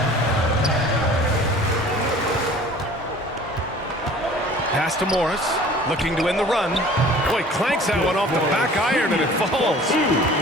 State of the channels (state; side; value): normal; both; correlation 0.47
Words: Pass to Morris, looking to end the run. Boy, clanks that one off the back iron and it falls.